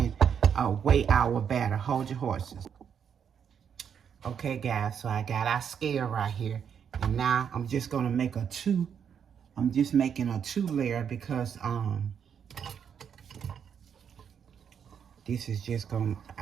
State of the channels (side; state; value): left; quieter; 7.7 dB